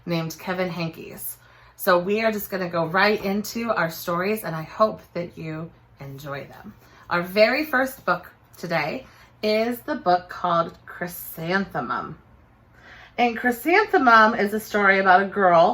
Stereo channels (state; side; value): identical; both; correlation 1.00